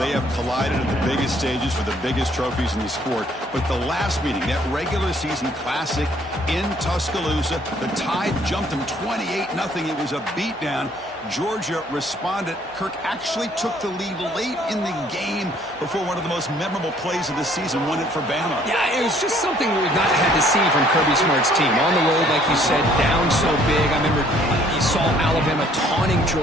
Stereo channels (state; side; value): normal; both; correlation 0.61